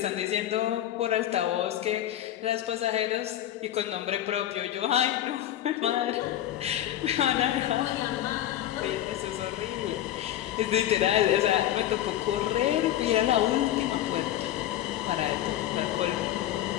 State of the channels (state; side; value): quieter; right; 12.6 dB